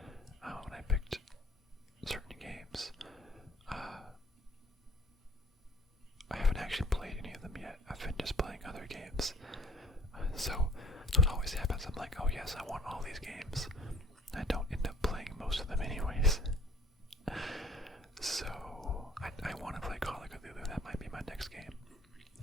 when I picked certain games, I haven't actually played any of them yet. I've been just playing other games. So it always happens. I'm like, oh yes, I want all these games. I don't end up playing most of them anyways. So I want to play Call of Cthulhu. That might be my next game.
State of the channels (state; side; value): normal; both; correlation 0.54